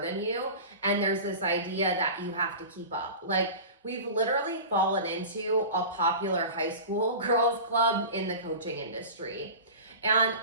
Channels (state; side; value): inverted; both; correlation -0.33